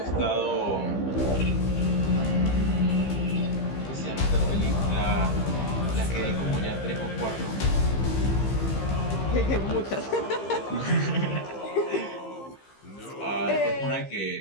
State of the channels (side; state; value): right; late; 15 ms